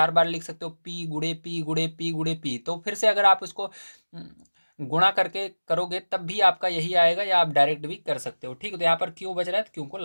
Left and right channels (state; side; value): inverted; both; correlation -1.00